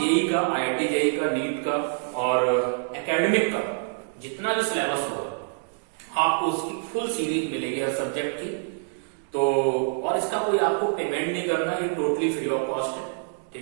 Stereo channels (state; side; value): silent; left; digital silence